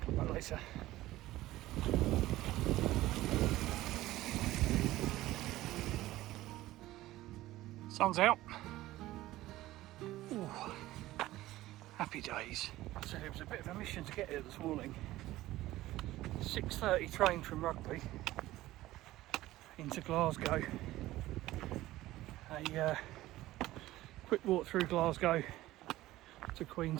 Come back later. Sun's out. Ooh, happy days. So it was a bit of a mission to get here this morning. 6:30 train from Rugby into Glasgow. A quick walk through Glasgow to Queen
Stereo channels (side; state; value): left; quieter; 16.3 dB